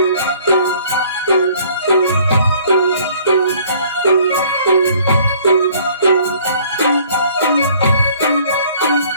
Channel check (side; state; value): both; inverted; correlation -0.56